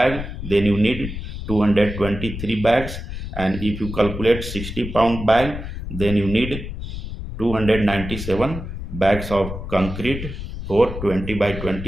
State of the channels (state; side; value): noise; left; rumble, 8 dB below the sound